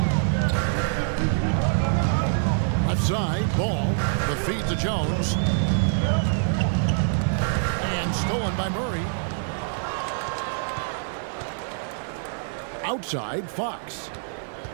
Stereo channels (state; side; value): silent; left; digital silence